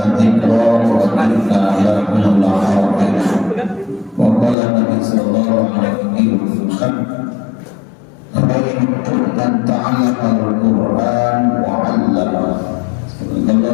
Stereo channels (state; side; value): drops out; right; at 4.5 s